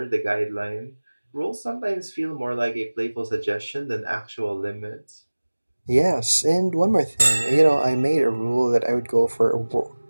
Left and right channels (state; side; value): inverted; both; correlation -1.00